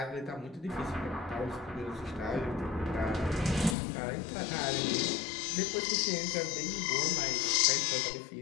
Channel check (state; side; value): drops out; right; at 3.8 s